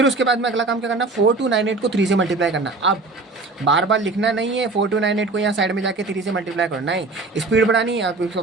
उसके बाद में अगला काम क्या करना, 4298 को 3 से मल्टीप्लाई करना। अब बार बार लिखना नहीं है 4298 को यहाँ साइड में जाके 3 से मल्टीप्लाई करना है, स्पीड बढ़ानी है।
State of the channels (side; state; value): left; quieter; 3.5 dB